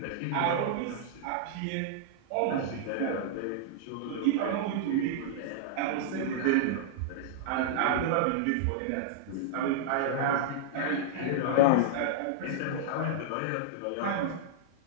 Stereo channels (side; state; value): both; different; correlation -0.02